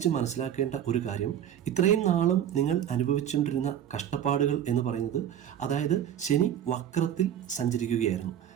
മനസ്സിലാക്കേണ്ട ഒരു കാര്യം, ഇത്രയും നാളും നിങ്ങൾ അനുഭവിച്ചുകൊണ്ടിരുന്ന കഷ്ടപ്പാടുകൾ എന്ന് പറയുന്നത്, അതായത് ശനി വക്രത്തിൽ സഞ്ചരിക്കുകയായിരുന്നു.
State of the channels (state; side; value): quieter; left; 10.1 dB